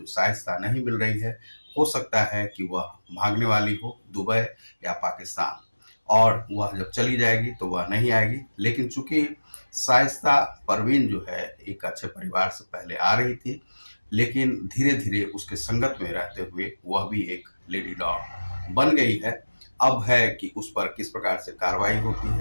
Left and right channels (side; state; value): both; inverted; correlation -1.00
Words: शाइस्ता नहीं मिल रही है, हो सकता है कि वह भागने वाली हो दुबई या पाकिस्तान और वह जब चली जाएगी तो वह नहीं आएगी। लेकिन चूंकि शाइस्ता परवीन जो है एक अच्छे परिवार से पहले आ रही थी, लेकिन धीरे-धीरे उसके संगत में रहते हुए वह भी एक लेडी डॉन बन गई है। अब है कि उस पर किस प्रकार से कार्रवाई होती